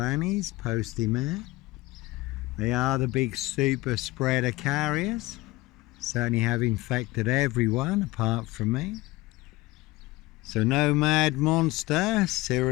postie mail. They are the big super spreader carriers, certainly have infected everyone apart from me. So no mad monster,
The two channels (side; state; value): right; quieter; 20.3 dB